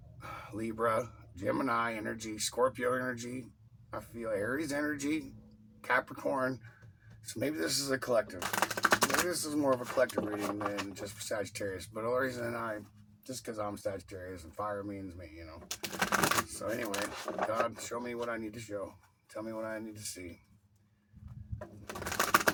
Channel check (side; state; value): both; identical; correlation 1.00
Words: Libra, Gemini energy, Scorpio energy, I feel Aries energy, Capricorn. So maybe this is a collective. Maybe this is more of a collective reading than just for Sagittarius. But the only reason just because I'm Sagittarius and fire means me, you know. So anyway, God, show me what I need to show. Tell me what I need to see.